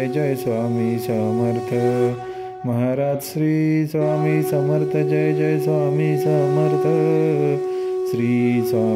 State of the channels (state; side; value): identical; both; correlation 1.00